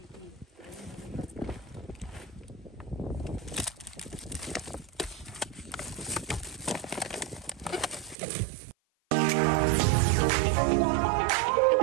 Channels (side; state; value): left; drops out; at 8.2 s